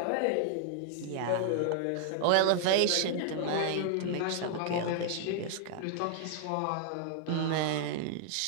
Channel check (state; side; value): different; both; correlation 0.00